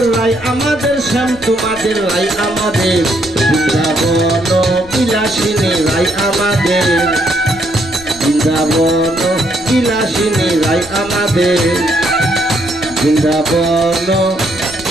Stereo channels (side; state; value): left; noise; rumble, 20 dB below the sound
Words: শ্যাম তোমাদের রাই আমাদের বৃন্দাবন বিলাসিনী রাই আমাদের বৃন্দাবন বিলাসিনী রাই আমাদের বৃন্দাবন